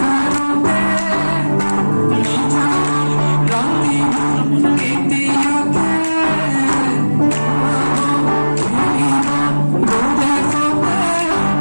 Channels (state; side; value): inverted; both; correlation -1.00